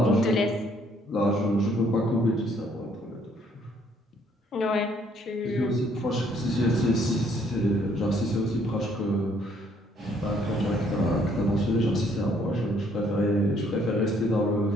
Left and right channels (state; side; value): normal; both; correlation 0.65